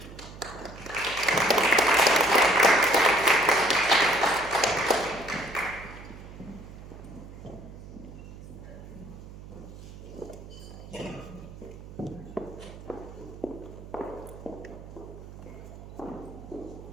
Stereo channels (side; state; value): right; noise; hum, 15 dB below the sound